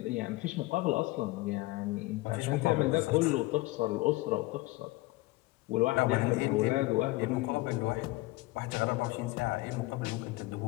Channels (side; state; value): right; quieter; 20.3 dB